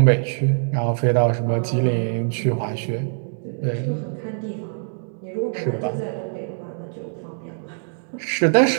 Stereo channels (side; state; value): left; silent; digital silence